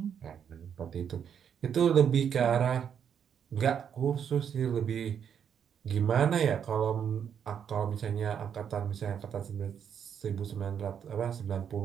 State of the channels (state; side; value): quieter; left; 8.1 dB